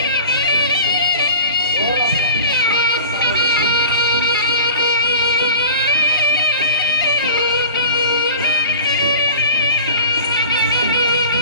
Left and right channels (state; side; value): inverted; both; correlation -0.39